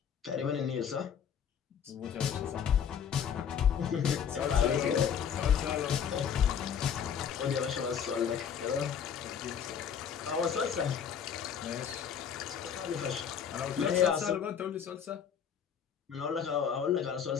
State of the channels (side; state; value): right; quieter; 7.8 dB